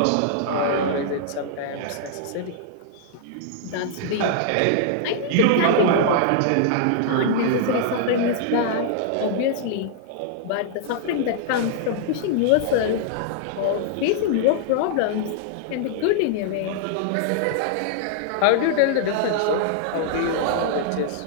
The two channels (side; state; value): both; different; correlation -0.01